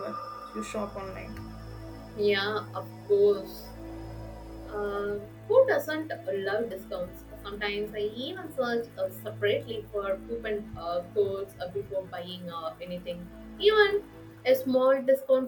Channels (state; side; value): identical; both; correlation 1.00